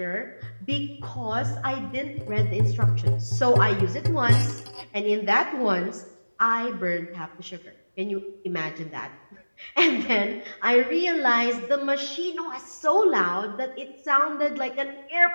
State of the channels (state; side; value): inverted; both; correlation -1.00